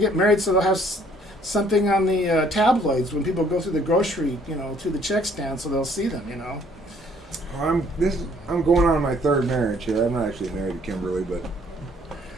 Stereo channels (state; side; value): normal; both; correlation 0.62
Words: married so they'll have something on the tabloids when people go through the grocery, through the check stand, so they'll see them, I'm going on my third marriage here. I'm not actually married to Kimberly, but